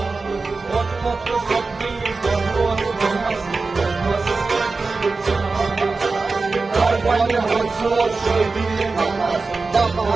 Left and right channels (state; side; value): quieter; left; 4.0 dB